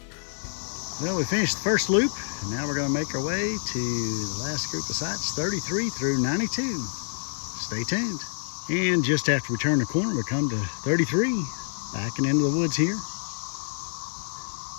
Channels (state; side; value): silent; right; 60 dB below the other